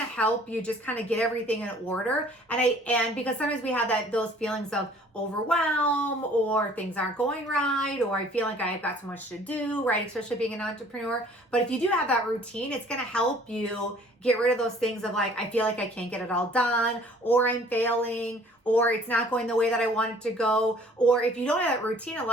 to help you just kind of get everything in order. And because sometimes we have those feelings of overwhelm, or things aren't going right, or I feel like I've got so much to do, right? Especially being an entrepreneur. But if you do have that routine, it's going to help you get rid of those things of like, I feel like I can't get it all done, or I'm failing, or it's not going the way that I want it to go. Or if you don't have that routine, a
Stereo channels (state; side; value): normal; both; correlation 0.54